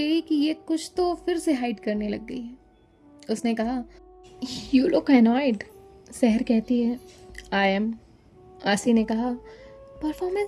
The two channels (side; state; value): both; identical; correlation 1.00